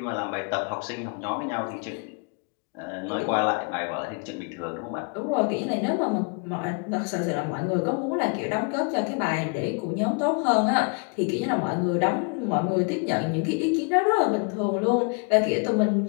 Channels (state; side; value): quieter; right; 35.6 dB